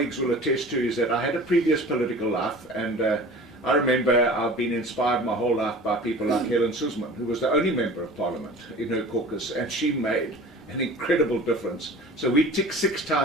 will attest to is that I had a previous political life, and I remember I've been inspired my whole life by people like Helen Suzman, who was the only member of Parliament in her caucus, and she made an incredible difference. So we tick 6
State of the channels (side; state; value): both; normal; correlation 0.41